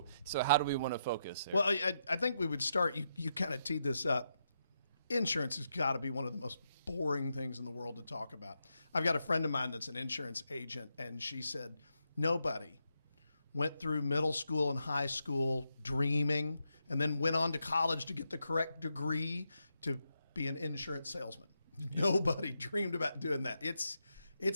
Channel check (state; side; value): inverted; both; correlation -0.83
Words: how do we want to focus there? Well, I think we would start. You kind of teed this up. Insurance has got to be one of the most boring things in the world to talk about. I've got a friend of mine that's an insurance agent, and she said, nobody went through middle school and high school dreaming and then went on to college to get the correct degree to be an insurance salesman. Nobody dreamed about doing that.